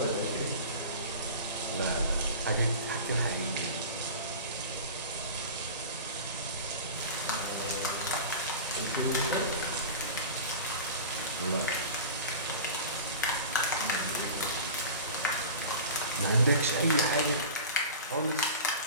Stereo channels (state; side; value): inverted; both; correlation -0.34